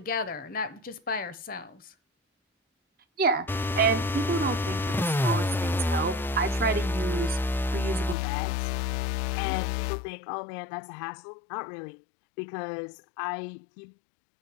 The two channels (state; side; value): drops out; right; at 8.2 s